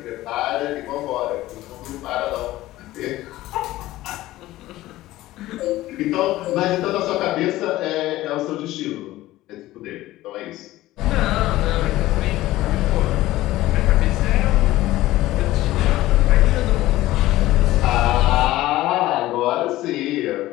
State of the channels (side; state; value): right; quieter; 16.4 dB